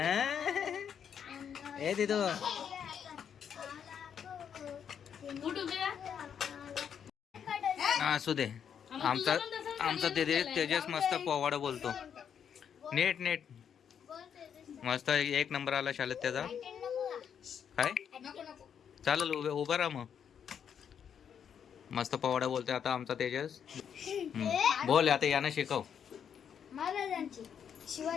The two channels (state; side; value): quieter; right; 8.0 dB